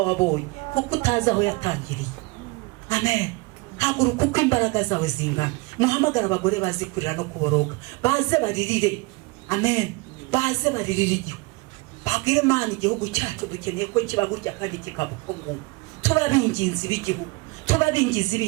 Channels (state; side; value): quieter; left; 25.0 dB